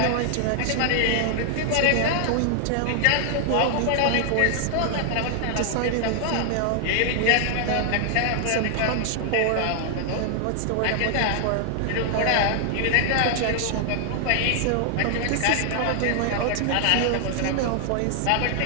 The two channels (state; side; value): different; both; correlation 0.00